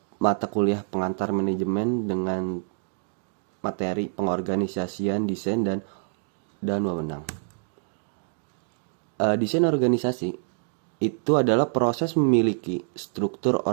mata kuliah pengantar manajemen dengan materi pengorganisasian, desain dan wewenang. Desain organisasi itu adalah proses memiliki struktur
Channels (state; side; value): silent; left; digital silence